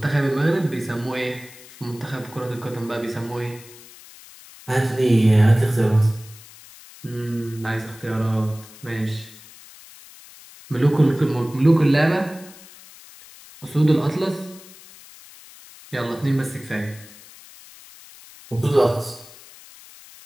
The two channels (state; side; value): noise; left; hiss, 20 dB below the sound